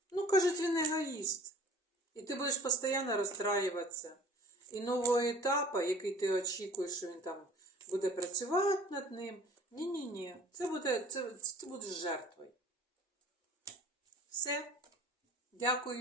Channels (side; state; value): both; normal; correlation 0.48